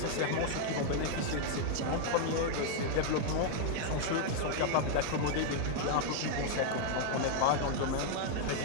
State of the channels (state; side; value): different; both; correlation 0.00